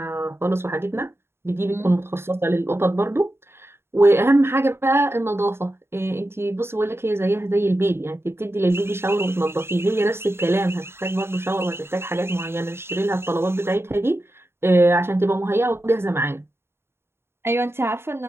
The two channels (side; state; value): left; late; 0.12 ms